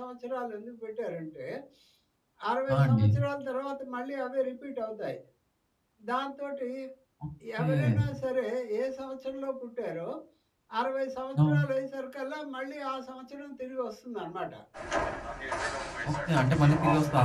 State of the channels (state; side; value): identical; both; correlation 1.00